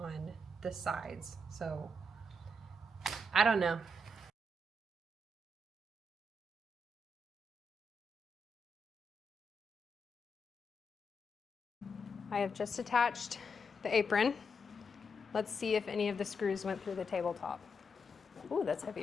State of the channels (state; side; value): normal; both; correlation 0.82